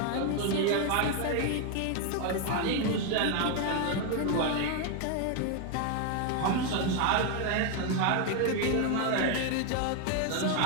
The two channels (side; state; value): both; different; correlation 0.01